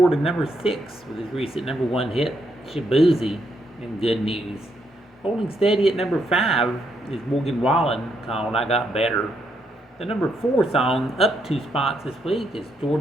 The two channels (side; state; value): both; normal; correlation 0.77